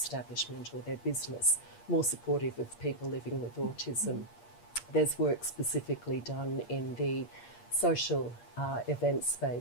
or their business more supportive of people living with autism. There's work specifically done in the social event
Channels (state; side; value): late; right; 8.5 ms